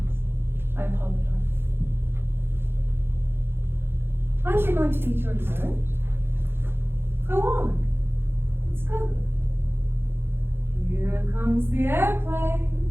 I apologize. Aren't you going to eat your dessert? Go on. It's good. Here comes the airplane.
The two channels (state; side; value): late; left; 0.11 ms